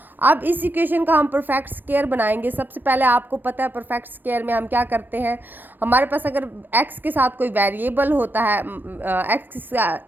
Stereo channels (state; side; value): late; left; 0.090 ms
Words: अब इस इक्वेशन का हम परफेक्ट स्क्वायर बनाएंगे। सबसे पहले आपको पता है परफेक्ट स्क्वायर में हम क्या करते हैं, हमारे पास अगर x के साथ कोई वेरिएबल होता है, एक्स